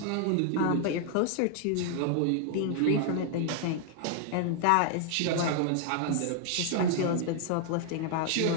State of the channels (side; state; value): both; different; correlation 0.00